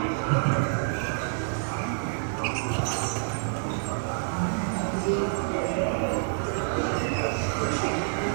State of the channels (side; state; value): left; silent; 60 dB below the other